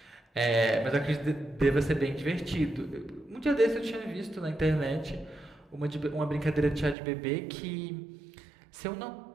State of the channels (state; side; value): drops out; left; at 7.0 s